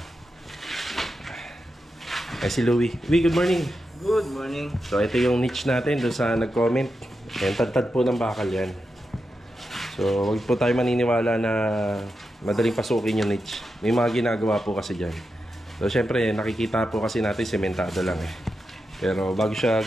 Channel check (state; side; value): normal; both; correlation 0.88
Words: Si Louie. Louie, good morning. Good morning. So ito yung niche natin doon sa nag-comment. Yan, tad-tad po ng bakal yan. So huwag po tayo maniniwala na madaling pasukin yung niche. May mga ginagawa po kasi dyan. So syempre nakikita po kasi natin sementado lang eh. Pero bago siya